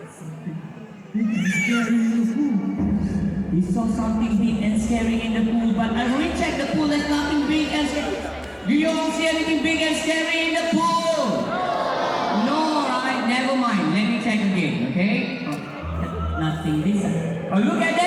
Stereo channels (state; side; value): identical; both; correlation 1.00